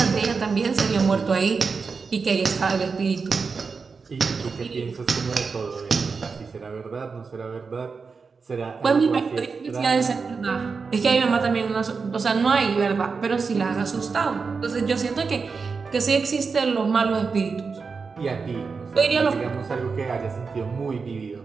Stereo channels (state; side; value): quieter; left; 5.0 dB